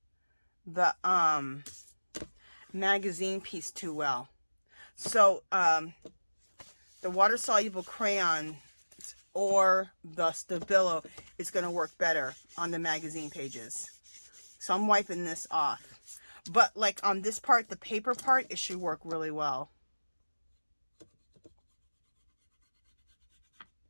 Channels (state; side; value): inverted; both; correlation -1.00